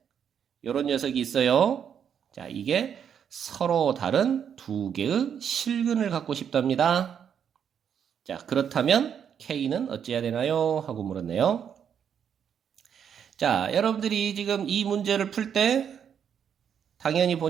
요런 녀석이 있어요. 자, 이게 서로 다른 두 개의 실근을 갖고 싶답니다. 자, 그렇다면 K는 어찌해야 되나요? 하고 물었네요. 자, 여러분들이 지금 이 문제를 풀 때 당연히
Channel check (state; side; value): quieter; left; 8.1 dB